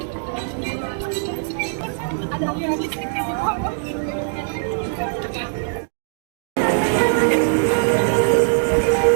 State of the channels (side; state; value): left; silent; digital silence